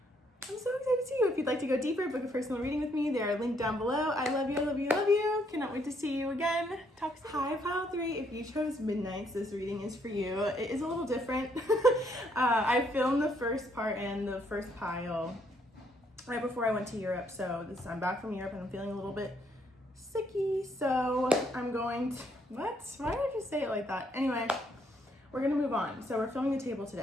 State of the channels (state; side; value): normal; both; correlation 0.71